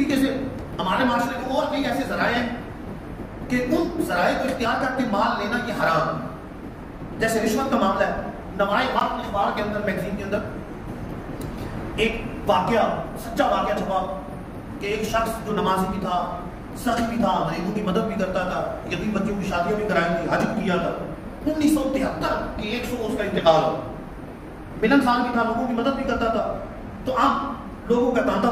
سے ہمارے معاشرے میں اور کئی ایسے ذرائع ہیں کہ ان ذرائع کو اختیار کر کے مال لینا یہ حرام ہے. جیسے رشوت کا معاملہ ہے. نمائے وقت اخبار کے اندر، میگزین کے اندر ایک واقعہ، سچا واقعہ چھپا کہ ایک شخص جو نمازی بھی تھا، سخی بھی تھا، غریبوں کی مدد بھی کرتا تھا، یتیم بچوں کی شادیاں بھی کرائی تھی، حج بھی کیا تھا. 1973 کی 100 اس کا انتقال ہو. ملن سال بھی تھا، لوگوں کی مدد بھی کرتا تھا. تو اب لوگوں کا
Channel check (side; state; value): both; identical; correlation 1.00